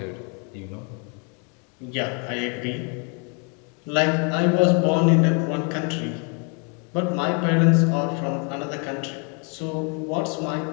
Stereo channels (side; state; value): right; quieter; 36.8 dB